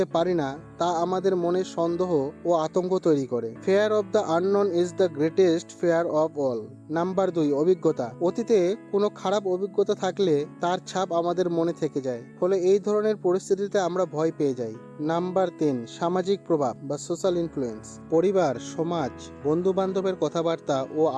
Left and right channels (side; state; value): both; identical; correlation 1.00